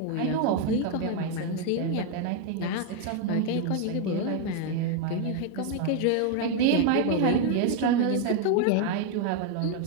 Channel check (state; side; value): different; both; correlation 0.01